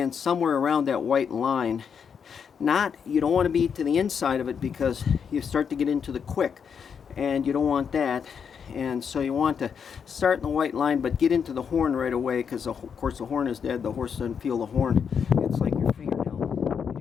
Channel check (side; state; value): right; quieter; 6.9 dB